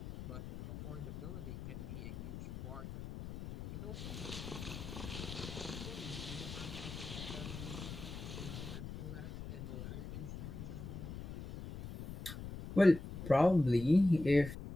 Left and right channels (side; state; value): left; noise; rumble, 9 dB below the sound